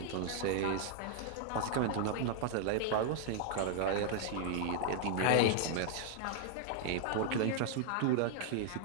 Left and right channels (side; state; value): both; different; correlation 0.00